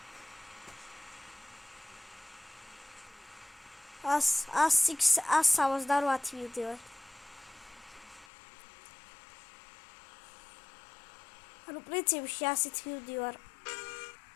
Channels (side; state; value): right; drops out; at 8.2 s